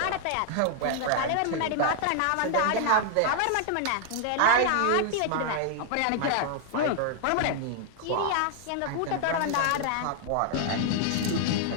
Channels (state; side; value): different; both; correlation 0.00